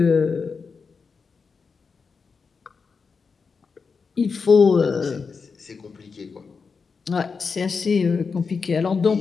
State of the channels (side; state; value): right; quieter; 5.2 dB